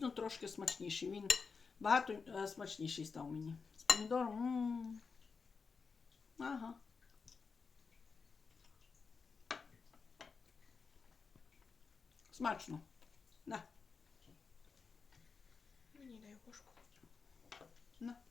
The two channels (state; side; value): quieter; right; 5.1 dB